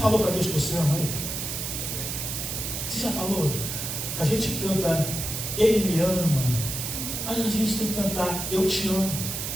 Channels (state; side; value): noise; right; hiss, 4 dB below the sound